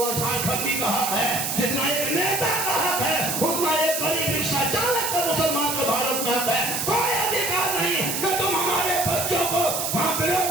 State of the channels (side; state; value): right; noise; hiss, 1 dB below the sound